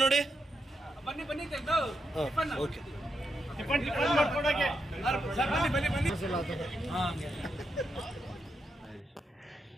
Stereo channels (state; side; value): normal; both; correlation 0.83